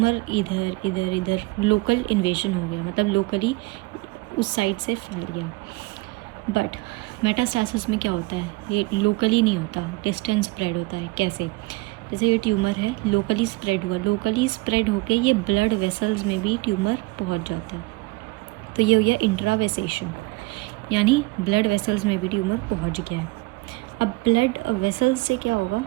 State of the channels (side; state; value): left; quieter; 23.0 dB